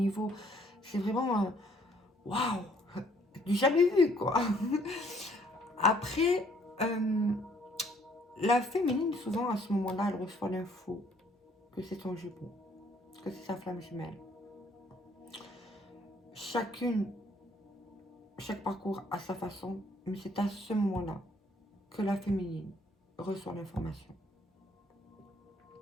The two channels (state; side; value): normal; both; correlation 0.63